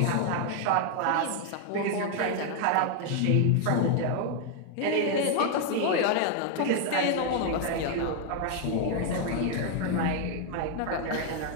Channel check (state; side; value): different; both; correlation 0.00